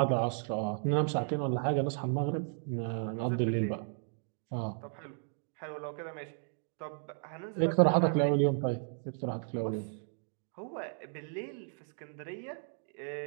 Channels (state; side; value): silent; left; 55 dB below the other